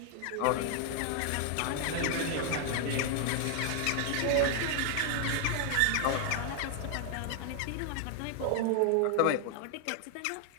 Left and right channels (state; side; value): different; both; correlation 0.00